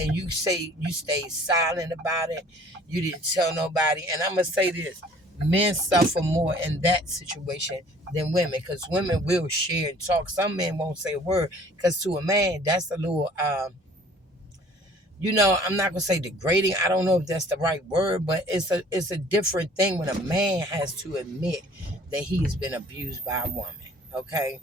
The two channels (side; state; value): both; normal; correlation 0.53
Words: you say you stayed silent about it. You didn't tell nobody. And I'm gonna say this: men suffer more in that situation than women, because women will share and talk. Some men won't say a word, because to a man, that's a little I'm not gonna say degrading. I don't know if that's the right word, but it's a different thing when a man has to admit that he has been abused by a woman. Okay,